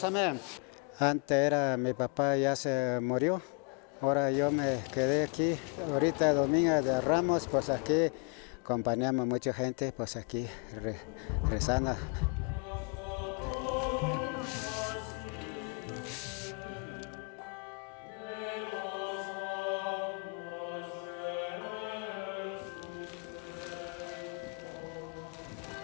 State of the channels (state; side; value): quieter; right; 35.3 dB